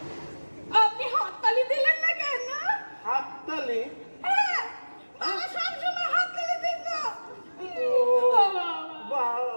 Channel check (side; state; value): both; inverted; correlation -1.00